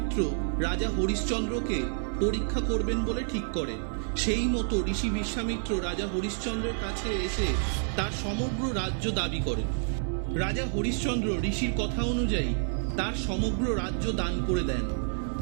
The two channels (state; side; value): silent; left; 59 dB below the other